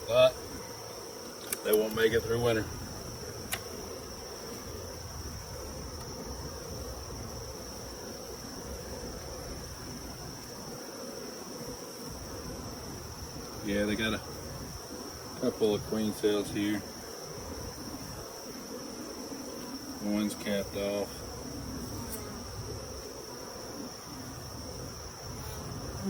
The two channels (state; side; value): identical; both; correlation 1.00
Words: not, they won't make it through winter. Yeah, they got a couple of queen cells here. One's capped off.